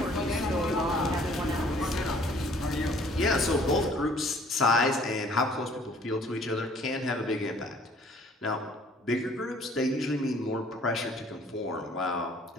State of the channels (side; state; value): both; normal; correlation 0.56